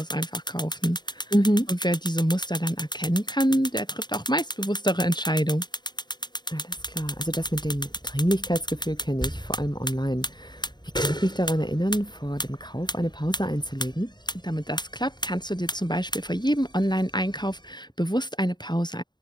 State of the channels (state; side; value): late; right; 0.21 ms